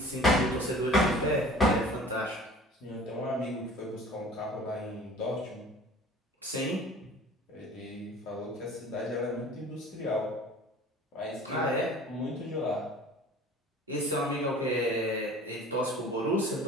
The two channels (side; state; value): both; normal; correlation 0.45